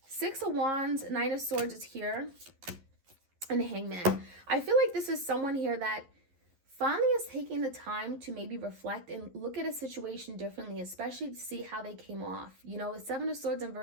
Six of Wands, Nine of Swords is here, and Hangman. I feel like this is someone here that finally is taking the time to maybe reflect and look at a situation differently, especially to see how they came off. You know, the Seven of Swords in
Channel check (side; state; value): left; late; 11 ms